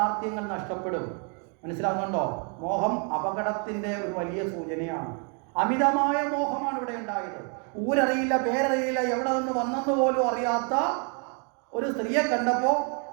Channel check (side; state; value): left; quieter; 38.4 dB